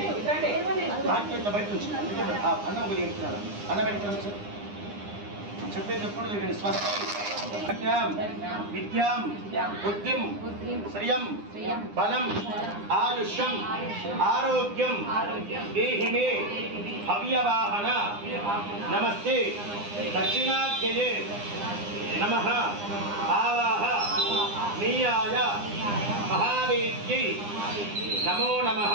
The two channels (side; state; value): left; late; 9.8 ms